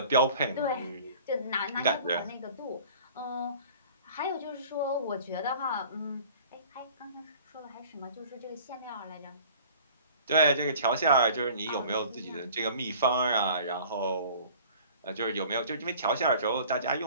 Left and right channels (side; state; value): both; inverted; correlation -0.47